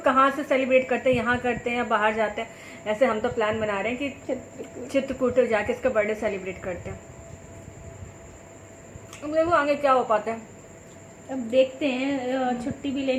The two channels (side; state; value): both; identical; correlation 1.00